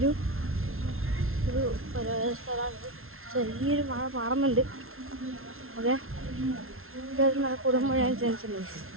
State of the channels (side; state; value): left; late; 0.62 ms